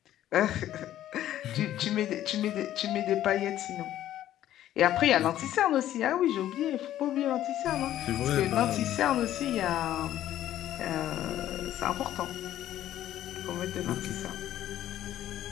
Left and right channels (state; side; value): quieter; right; 12.5 dB